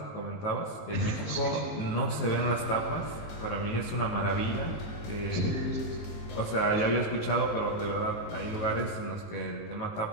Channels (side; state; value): right; late; 18 ms